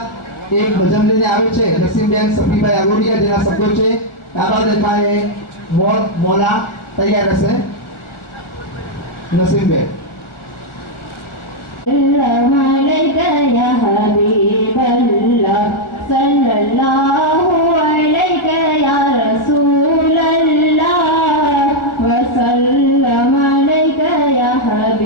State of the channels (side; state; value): right; late; 1.4 ms